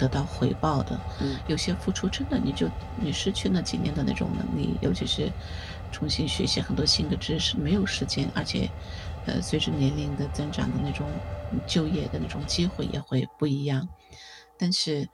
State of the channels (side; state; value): both; identical; correlation 1.00